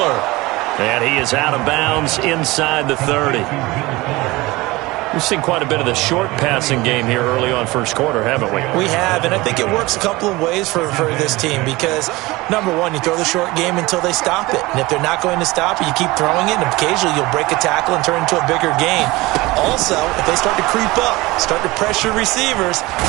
And he is out of bounds inside the 30. We've seen quite a bit of the short passing game here early on first quarter, haven't we? We have, and I think it works a couple of ways for this team because, number one, you throw the short game until they stop it. And if they're not going to stop it, you keep throwing it, and occasionally you'll break a tackle and turn it into a bigger gain. Also, if they start to creep up, start to pressure receivers,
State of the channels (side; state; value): left; quieter; 21.1 dB